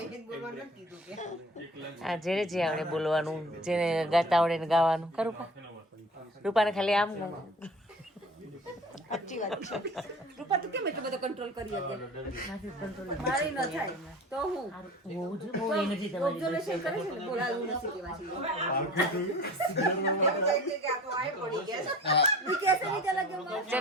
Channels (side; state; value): both; normal; correlation 0.42